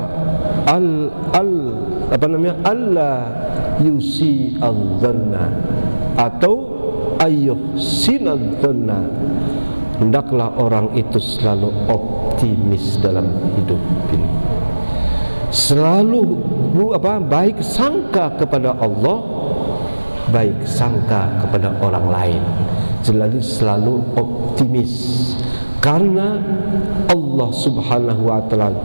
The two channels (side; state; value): both; inverted; correlation -1.00